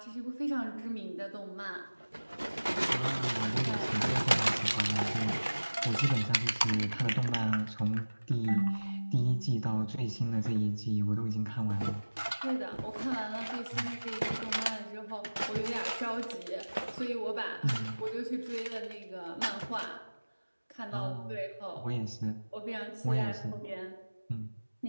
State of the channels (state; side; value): inverted; both; correlation -1.00